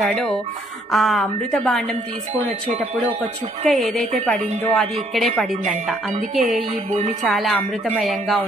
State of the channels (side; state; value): both; normal; correlation 0.66